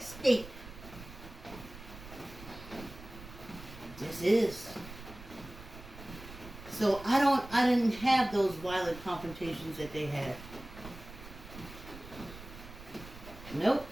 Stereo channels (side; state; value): right; noise; rumble, 15 dB below the sound